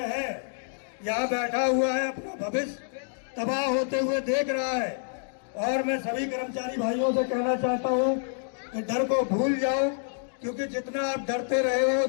है। यहाँ बैठा हुआ है, अपना भविष्य तबाह होते हुए देख रहा है। और मैं सभी कर्मचारी भाइयों से कहना चाहता हूँ कि डर को भूल जाओ, क्योंकि जितना आप डरते रहे हो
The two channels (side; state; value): right; silent; digital silence